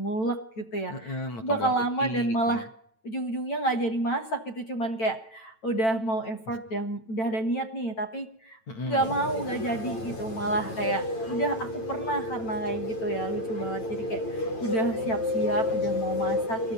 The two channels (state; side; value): late; right; 9.0 ms